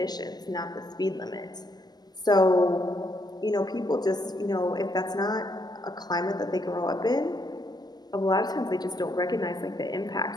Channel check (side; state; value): right; late; 0.20 ms